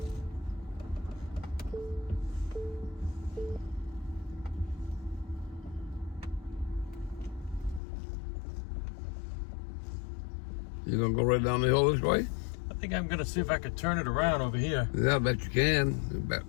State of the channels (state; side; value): drops out; right; at 7.8 s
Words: You gonna go right down the hill this way? I think I'm gonna see if I can turn it around over here. Yeah, I bet you can. Back